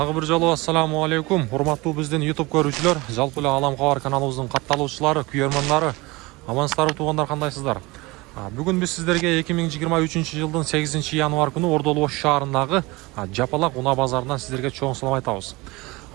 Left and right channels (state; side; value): quieter; left; 22.9 dB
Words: бир жолу ассаламу алейкум. Урматтуу биздин YouTube көрүүчүлөр, жалпы эле Алам Кабар каналыбыздын катталуучулары, күйөрманнары, амансыздарбы туугандар, кандайсыздар? Бүгүн биз сиздерге 2023-жылдын 8-январ күнү Ордолу Ош шаарындагы Жапалак унаа базарынан сиздерге чоң салам айтабыз.